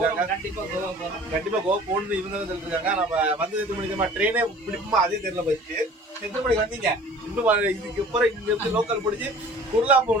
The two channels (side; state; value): both; normal; correlation 0.47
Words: கண்டிப்பா கோவா போகணும்னு இவங்க தான் சொல்லிருக்காங்க. நம்ம வந்து எத்தனை மணிக்கு ட்ரெயினே பிடிக்குமா அதே தெரியல. போயிட்டு எத்தனை மணிக்கு வந்தீங்க? இன்னும் இதுக்கு அப்புறம் இங்க இருந்து லோக்கல் பிடிச்சி குர்லா